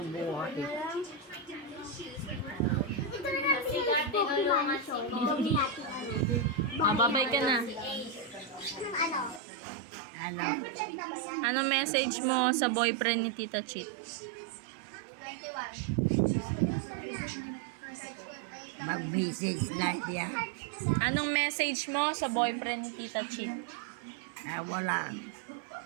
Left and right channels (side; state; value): left; drops out; at 9.4 s